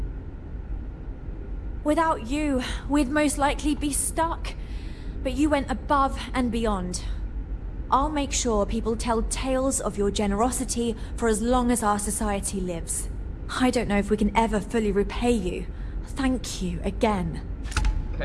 Without you, we'd most likely be stuck. But you went above and beyond. I'll make sure people tell tales of your generosity for as long as our society lives. I don't know if we can ever fully repay you. Thank you again.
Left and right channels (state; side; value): identical; both; correlation 1.00